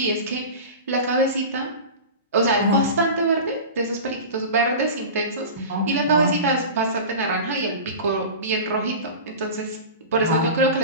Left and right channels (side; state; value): both; inverted; correlation -0.31